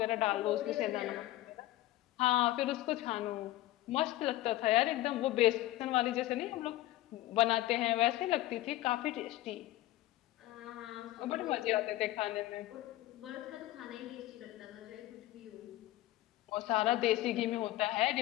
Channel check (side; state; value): right; quieter; 16.1 dB